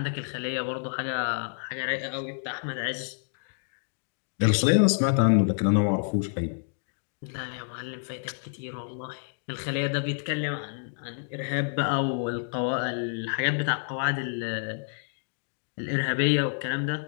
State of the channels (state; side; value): silent; right; digital silence